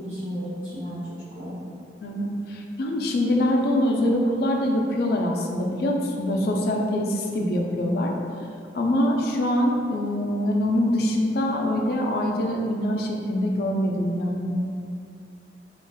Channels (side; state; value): both; normal; correlation 0.68